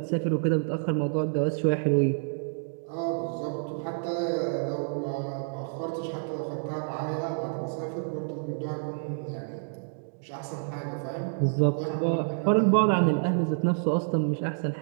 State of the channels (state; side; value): silent; left; digital silence